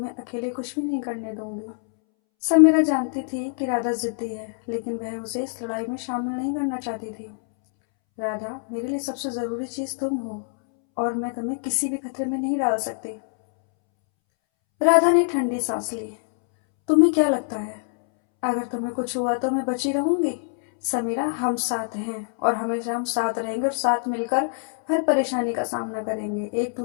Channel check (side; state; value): right; silent; 62 dB below the other